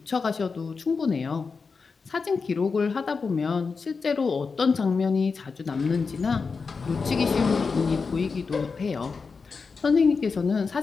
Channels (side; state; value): right; quieter; 4.9 dB